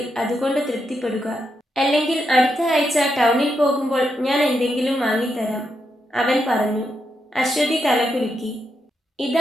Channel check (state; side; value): normal; both; correlation 0.83